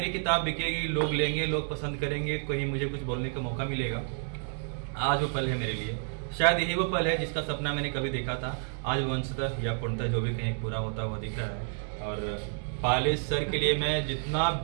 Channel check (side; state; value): left; silent; 58 dB below the other